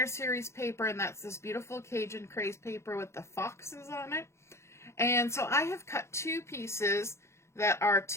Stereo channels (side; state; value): right; late; 0.13 ms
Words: series paper, and that's this beautiful Cajun craze paper with the foxes on it. And so I have cut 2 pieces that are